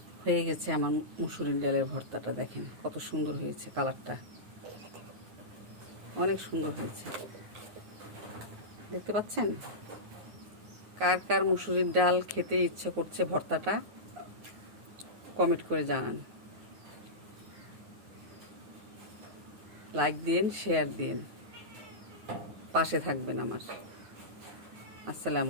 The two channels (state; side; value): late; left; 9.4 ms